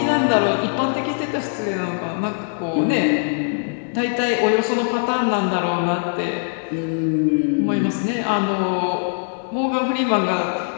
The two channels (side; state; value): right; silent; digital silence